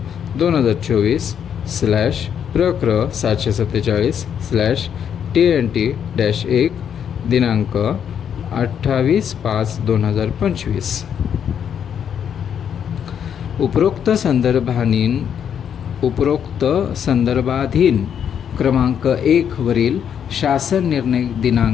2024/प्रक्र 747/TNT-1 दिनांक 28/5/2025. उपरोक्त संदर्भाधीन क्रमांक 1 वरील शासन निर्णय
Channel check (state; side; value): quieter; right; 8.4 dB